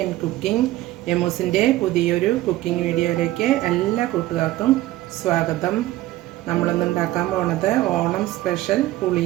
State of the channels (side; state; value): left; quieter; 16.1 dB